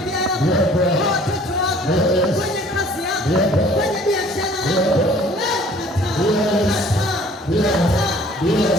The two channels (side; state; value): both; normal; correlation 0.53